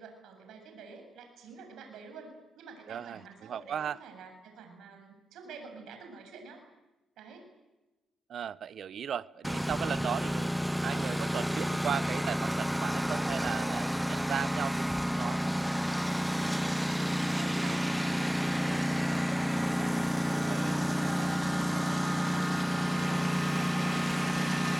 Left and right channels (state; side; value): normal; both; correlation 0.96